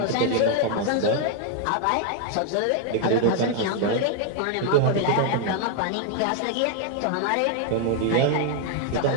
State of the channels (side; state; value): both; different; correlation 0.00